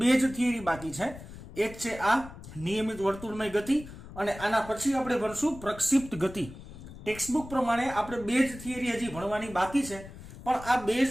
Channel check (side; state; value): left; noise; rumble, 15 dB below the sound